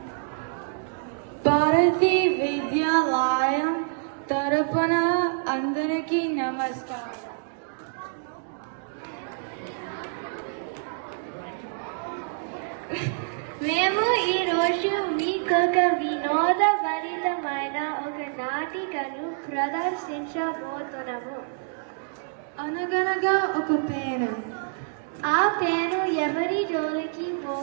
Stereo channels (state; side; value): silent; left; digital silence